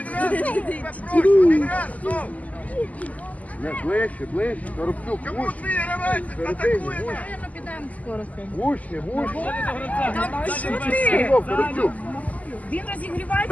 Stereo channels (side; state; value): right; late; 0.074 ms